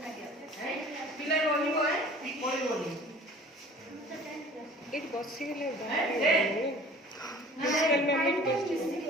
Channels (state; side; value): normal; both; correlation 0.47